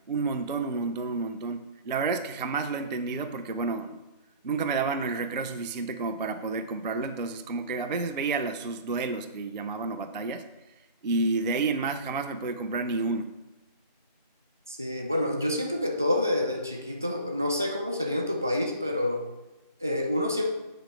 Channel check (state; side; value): inverted; both; correlation -0.45